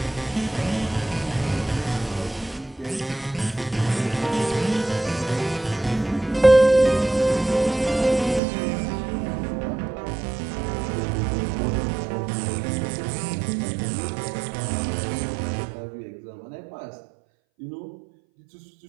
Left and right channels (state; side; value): drops out; left; at 8.4 s